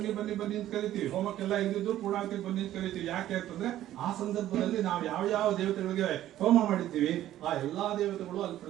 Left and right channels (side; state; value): left; quieter; 13.1 dB